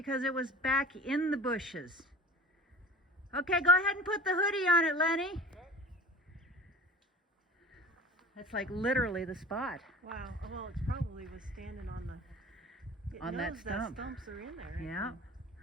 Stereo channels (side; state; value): both; normal; correlation 0.38